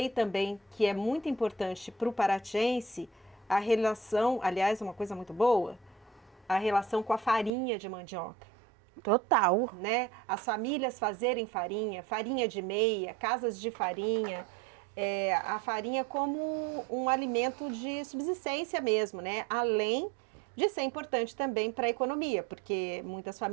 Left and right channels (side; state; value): left; drops out; at 7.5 s